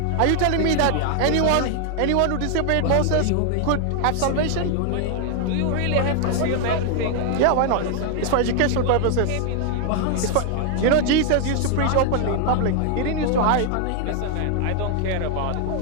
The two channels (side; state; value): both; different; correlation 0.00